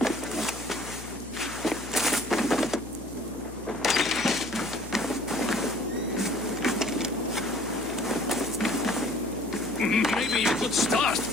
Maybe you could start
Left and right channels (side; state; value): left; noise; hum, 14 dB below the sound